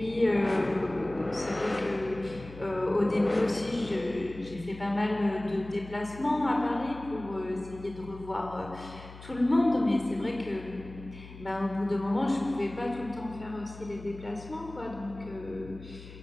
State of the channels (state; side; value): noise; left; hum, 16 dB below the sound